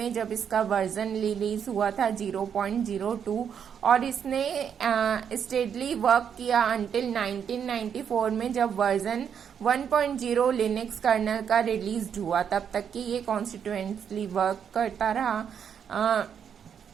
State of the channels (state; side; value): quieter; left; 7.9 dB